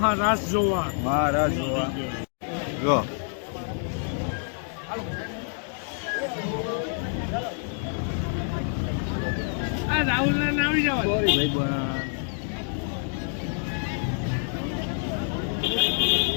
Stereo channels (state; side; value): silent; right; 60 dB below the other